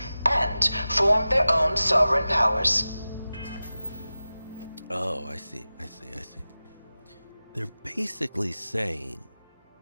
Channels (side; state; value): both; inverted; correlation -0.95